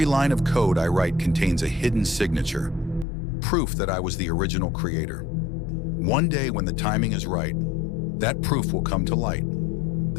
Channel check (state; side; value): drops out; right; at 3.1 s